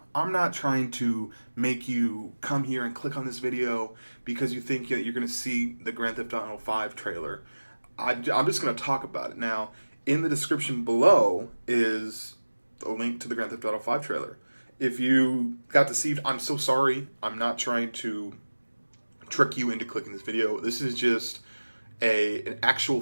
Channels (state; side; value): inverted; both; correlation -1.00